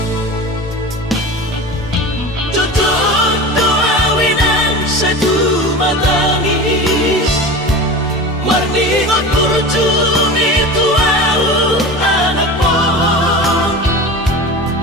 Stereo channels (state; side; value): normal; both; correlation 0.31